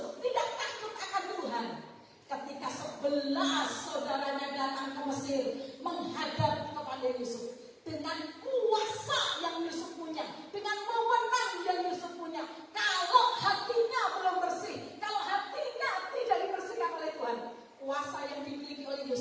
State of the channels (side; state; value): both; identical; correlation 1.00